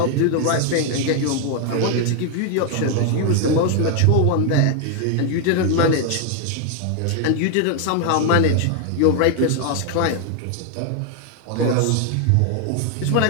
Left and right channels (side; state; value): both; different; correlation 0.00